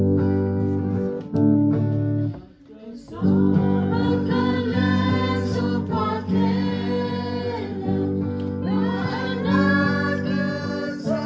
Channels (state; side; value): identical; both; correlation 1.00